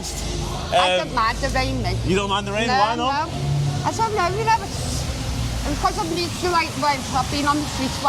I don't mind the rain, mate. You don't mind the rain? No, Why not? no. I don't know, you know, because I'm used to, like, I've been on the streets a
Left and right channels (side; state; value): both; identical; correlation 1.00